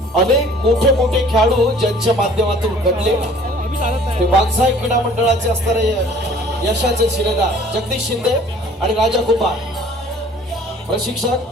अनेक मोठे मोठे खेळाडू ज्यांच्या माध्यमातून घडले ते वाघजाई क्रीडा मंडळाचे असणारे यशाचे शिलेदार जगदीश शिंदे आणि राजा कुंभार.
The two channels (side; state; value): both; normal; correlation 0.52